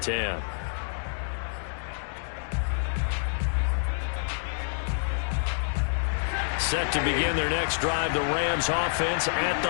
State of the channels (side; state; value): right; silent; digital silence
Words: 10. Set to begin their next drive, the Rams offense at